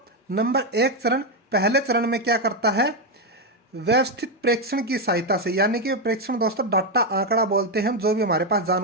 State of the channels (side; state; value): both; normal; correlation 0.05